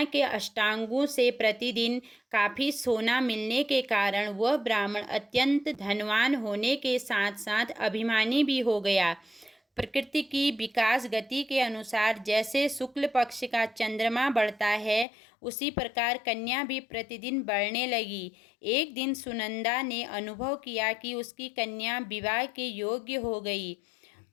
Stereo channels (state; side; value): drops out; right; at 15.1 s